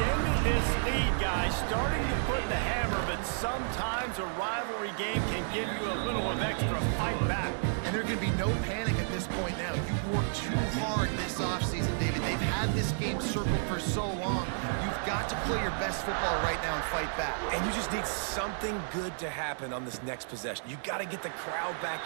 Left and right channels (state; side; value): silent; left; digital silence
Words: this lead, guys, starting to put the hammer, but sometimes a rivalry game can give you a little of extra fight back. And there can be no panic at this point now. You've worked too hard this offseason, David. They've had this game circled for so long. You've got to play your best football right now and fight back. And you just need something good to happen on this next possession. You got to get the crowd